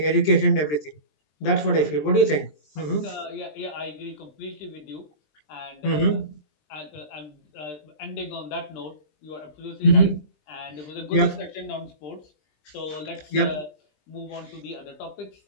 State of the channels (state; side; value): late; right; 20 ms